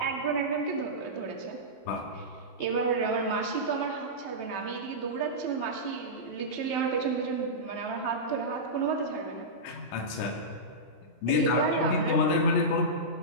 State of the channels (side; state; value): right; late; 16 ms